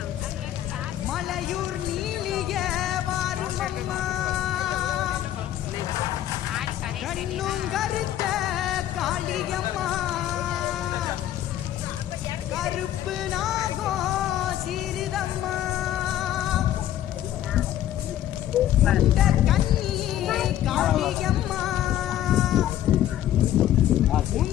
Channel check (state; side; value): quieter; right; 12.2 dB